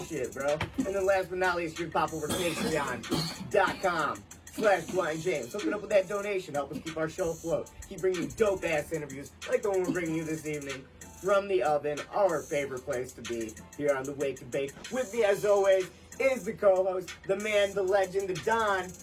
bro? And then last but not least, you can pop over to Patreon.com/Blind James. Hook it up with that donation. Help us keep our show afloat. Keep bringing you dope-ass interviews like the one we're bringing you this evening from the oven, our favorite place to be here on the Wake and Bake. With me, as always, is the co-host, the man, the legend, the Don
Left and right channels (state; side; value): identical; both; correlation 1.00